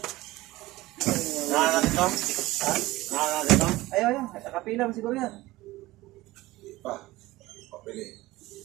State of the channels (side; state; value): left; quieter; 18.6 dB